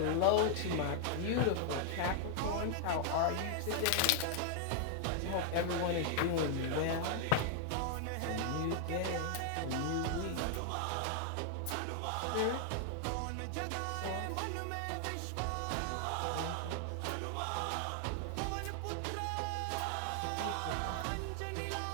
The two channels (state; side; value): different; both; correlation 0.00